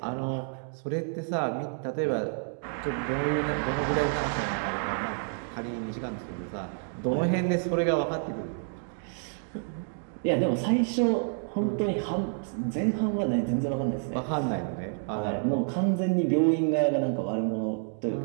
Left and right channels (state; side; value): silent; left; 59 dB below the other